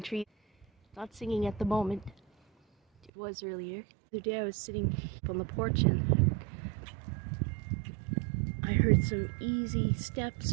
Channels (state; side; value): drops out; left; at 3.1 s